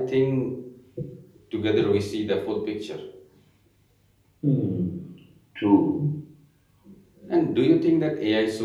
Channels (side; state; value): both; identical; correlation 1.00